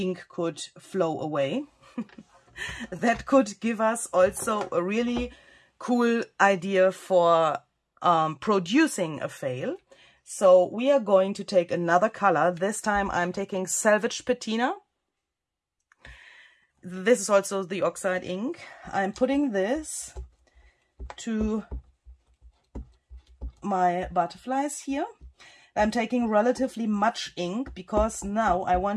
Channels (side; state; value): both; identical; correlation 1.00